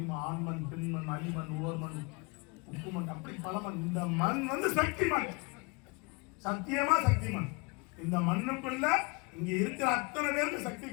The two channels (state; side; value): quieter; right; 28.7 dB